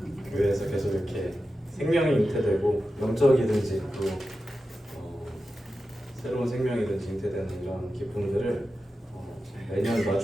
교회에서 계속 이렇게 생명이 잉태되고 영적이든지 또 새로운 생명이든지 잉태되는 이런 기쁨들을 매년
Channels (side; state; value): both; normal; correlation 0.92